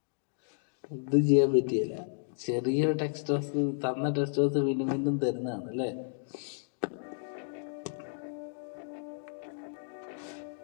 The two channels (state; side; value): silent; right; digital silence